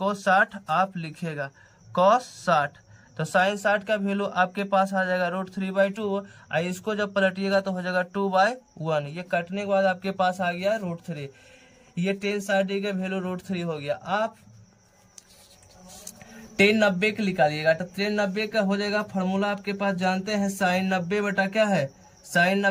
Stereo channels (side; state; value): both; identical; correlation 1.00